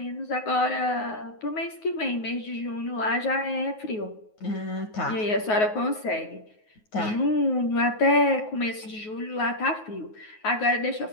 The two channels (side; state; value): right; late; 9.4 ms